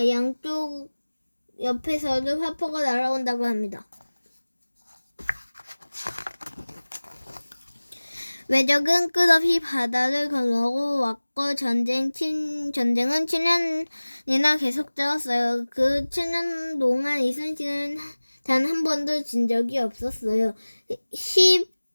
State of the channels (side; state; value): both; inverted; correlation -1.00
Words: 양쪽 옆에서도 화포가 날아온다고 합니다. 외적은 끝없이 바다를 건너고 왔고 전쟁은 7년이나 계속되었어요. 그 7년 동안 이순신은 단 한 번도 진 적이 없었어요.